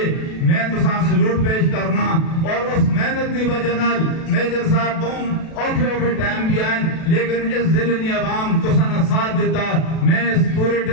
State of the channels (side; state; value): right; late; 37 ms